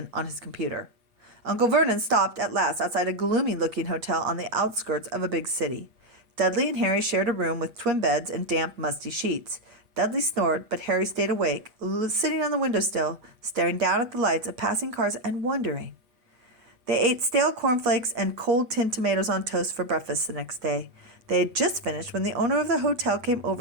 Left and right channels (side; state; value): left; late; 8.5 ms